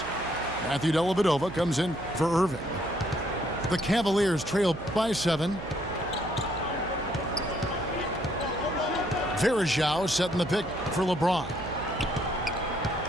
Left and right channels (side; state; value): right; noise; hum, 11 dB below the sound